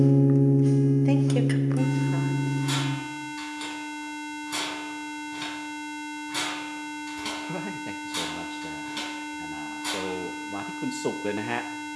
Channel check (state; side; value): identical; both; correlation 1.00